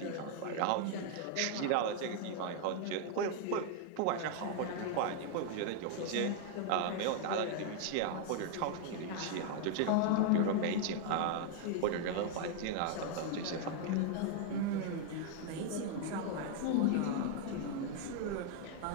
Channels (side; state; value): both; different; correlation 0.00